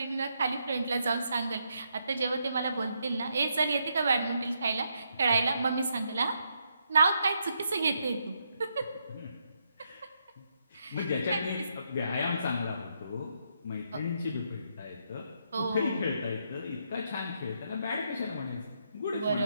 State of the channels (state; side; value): inverted; both; correlation -0.78